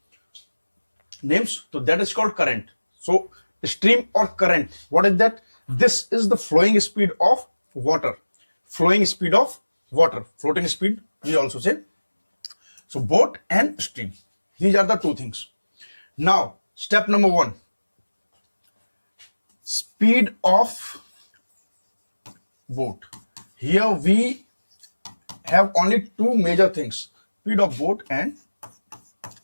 names. So that is called current. So stream or current, what is that? This is the flowing speed of water. Flowing speed of water. Floating speed, we also say. So boat and stream. These are the two things. Now, step number one. Speed of boat. Here we have only two major things. Speed of boat and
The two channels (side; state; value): both; inverted; correlation -1.00